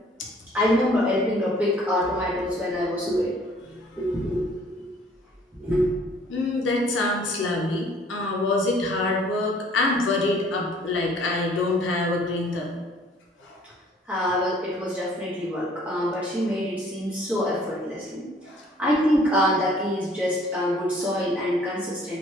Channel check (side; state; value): both; normal; correlation 0.57